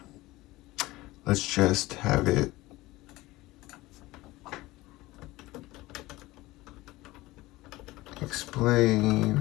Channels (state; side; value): quieter; right; 19.2 dB